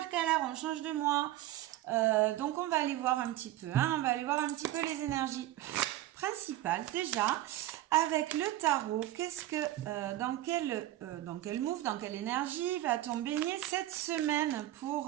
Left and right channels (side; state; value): left; quieter; 14.7 dB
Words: on change de mois. Donc on va aller voir un petit peu, on va aller voir un petit peu les énergies principales déjà. Avec le tarot, qu'est-ce que dans quel move, dans quelle énergie va-t-on baigner cette semaine